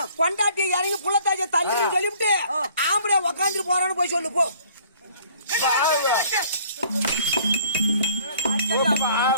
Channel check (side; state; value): both; inverted; correlation -0.56